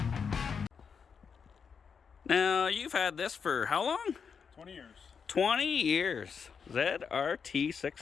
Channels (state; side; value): quieter; right; 6.3 dB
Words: Now, you've had this for how long? 20 years. 20 years. ZRT